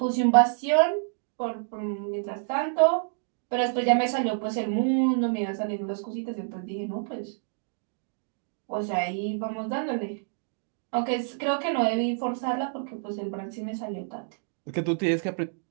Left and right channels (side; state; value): left; silent; digital silence